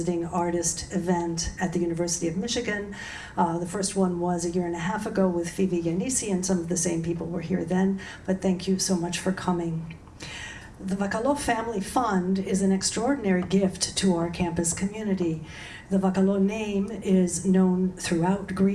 Artist event at the University of Michigan. The first one was a year and a half ago with Phoebe Yanisi, and some of the same people were here then, but thank you so much for coming. The Vakalo Family Fund is an extraordinary gift to our campus community. The Vakalo name is known throughout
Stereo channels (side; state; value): both; identical; correlation 1.00